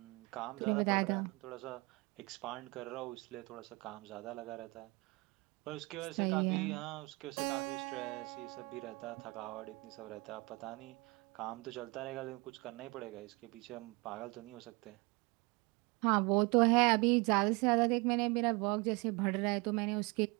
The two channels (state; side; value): quieter; left; 26.2 dB